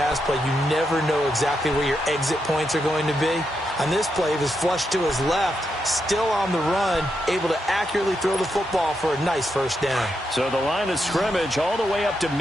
play, you never know exactly where your exit points are going to be. On this play, he was flushed to his left, still on the run, able to accurately throw the football for a nice first down. So the line of scrimmage all the way up to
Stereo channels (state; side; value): normal; both; correlation 0.83